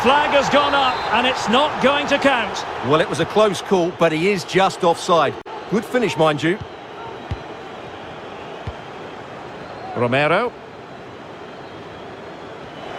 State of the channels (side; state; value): both; identical; correlation 1.00